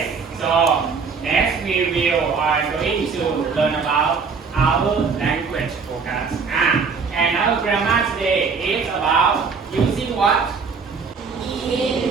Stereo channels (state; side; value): quieter; left; 5.3 dB